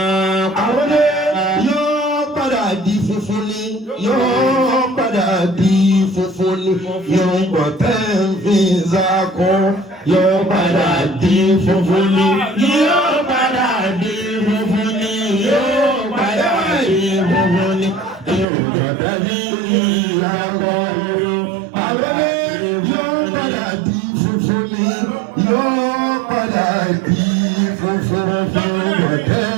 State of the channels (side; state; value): left; drops out; at 18.4 s